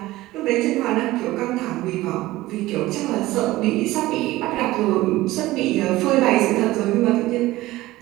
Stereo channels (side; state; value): left; quieter; 17.6 dB